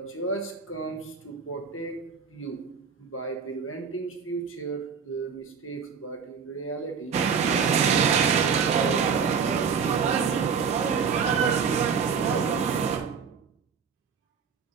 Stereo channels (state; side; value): quieter; left; 6.3 dB